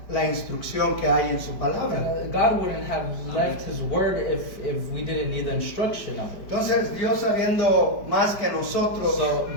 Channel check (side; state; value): right; late; 5.0 ms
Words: la instrucción que hay en su palabra. God wouldn't have left His word if we didn't need the instruction of it. Entonces Dios sabiendo más que nosotros So